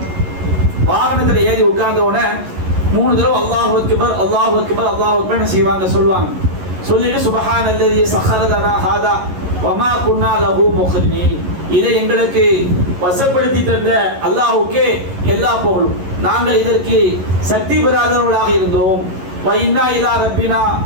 வாகனத்துல ஏறி உட்கார்ந்த உடனே 3 தடவை அல்லாஹு அக்பர் அல்லாஹு அக்பர் அல்லாஹு அக்பர் செய்வாங்க, சொல்லுவாங்க. சொல்லிட்டு சுப்ஹானல்லதி ஸஹர லனா ஹாதா வமா குன்னா லஹு முக்ரினீன், இதை எங்களுக்கு வசப்படுத்தி தந்த அல்லாஹ்வுக்கே எல்லா புகழும், நாங்கள் இதற்கு சக்தி பெறாதவர்களாக இருந்தோம். வ இன்னா இலா ரப்பினா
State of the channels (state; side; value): late; left; 11 ms